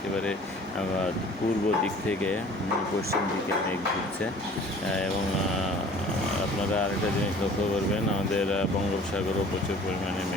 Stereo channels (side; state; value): both; normal; correlation 0.49